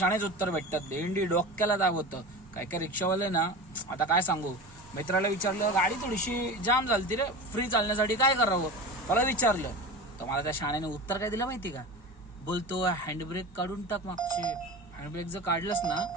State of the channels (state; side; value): normal; both; correlation 0.30